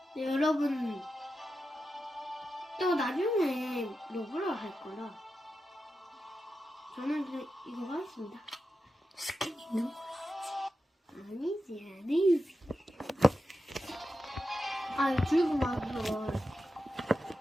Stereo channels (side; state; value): both; normal; correlation 0.90